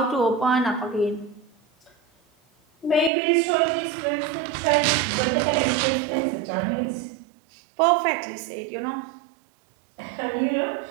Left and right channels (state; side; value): drops out; left; at 3.1 s